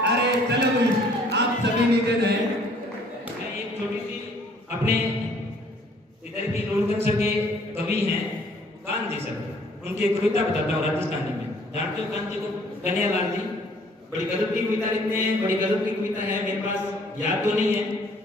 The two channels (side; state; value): both; normal; correlation 0.59